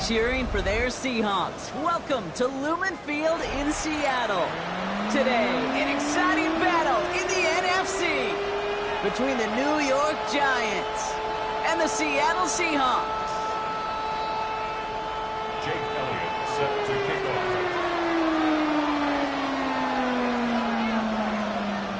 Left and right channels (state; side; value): identical; both; correlation 1.00